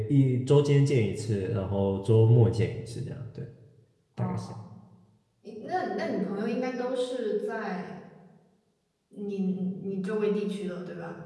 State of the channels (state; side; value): identical; both; correlation 1.00